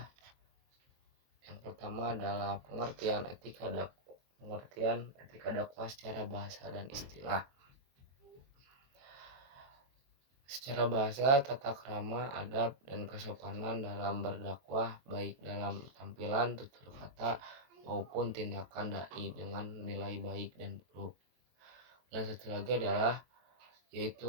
Yang pertama adalah pengertian etika dakwah secara bahasa dan istilah. Secara bahasa, tata krama, adab, dan kesopanan dalam berdakwah baik dalam tampilan, tutur kata, maupun tindakan dai dengan nilai baik dan buruk. Dan satu lagi adalah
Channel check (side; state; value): left; late; 23 ms